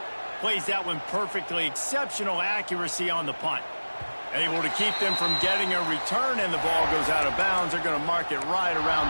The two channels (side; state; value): both; inverted; correlation -1.00